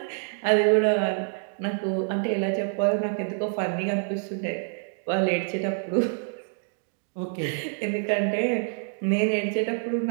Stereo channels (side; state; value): left; silent; digital silence